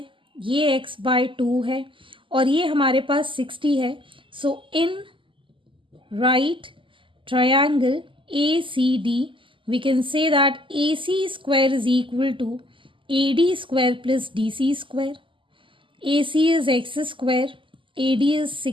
ये x/2 है और ये हमारे पास 60 है, so in right triangle ACD we can say that AC square is equal to AD square plus DC square. AC is x square, AD is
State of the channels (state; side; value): late; left; 0.25 ms